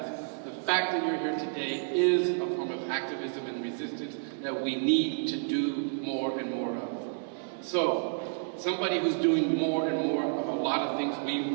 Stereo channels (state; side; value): silent; left; 58 dB below the other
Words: the fact that you're here today is a form of activism and resistance that we need to do more and more of. So, somebody who's doing more and more of a lot of things we